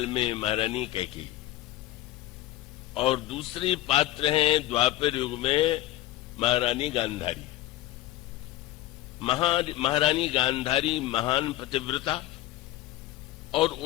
में महारानी कैकेयी, और दूसरी पात्र हैं द्वापर युग में महारानी गांधारी। महारानी गांधारी महान पतिव्रता, और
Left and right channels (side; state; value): right; quieter; 15.9 dB